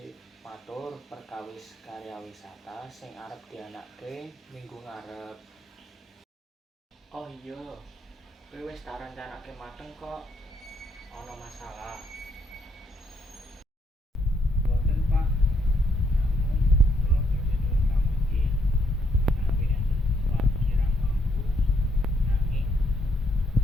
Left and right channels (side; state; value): both; normal; correlation 0.73